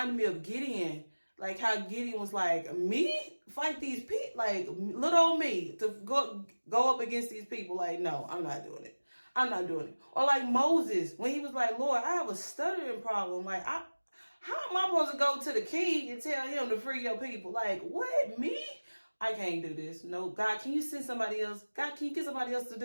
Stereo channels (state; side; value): inverted; both; correlation -1.00